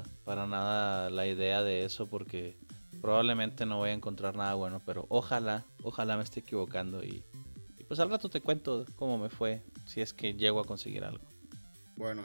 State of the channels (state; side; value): inverted; both; correlation -1.00